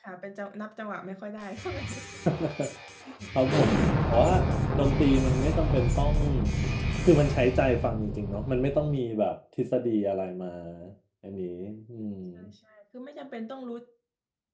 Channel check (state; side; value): identical; both; correlation 1.00